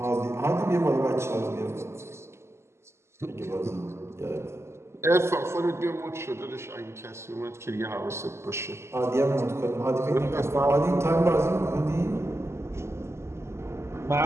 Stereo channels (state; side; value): late; left; 0.13 ms